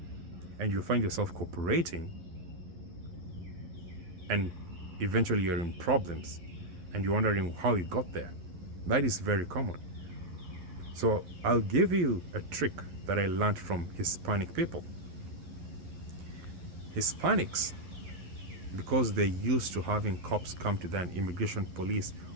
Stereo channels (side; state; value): left; late; 12 ms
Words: And you'll find yourself cooperating, and eventually you're in problems, and you're wondering how you got there. That is very common. So I'll give you a trick that I learned from Hispanic people. Hispanics, because they're used to having cops come to them, immigration police